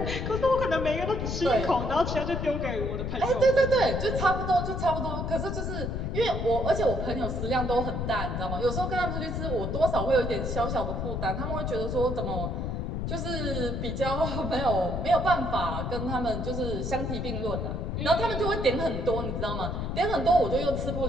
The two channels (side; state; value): left; noise; rumble, 2 dB below the sound